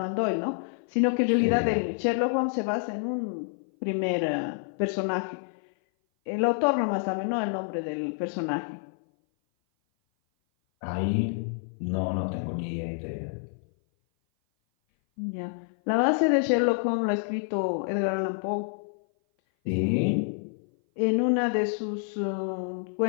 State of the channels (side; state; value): right; silent; 57 dB below the other